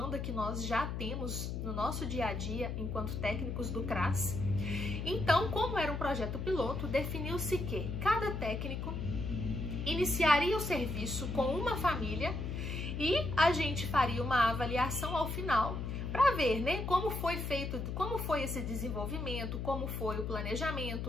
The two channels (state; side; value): noise; left; hum, 4 dB below the sound